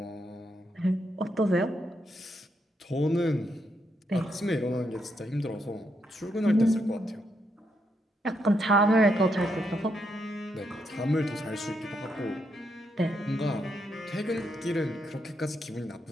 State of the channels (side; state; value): both; normal; correlation 0.79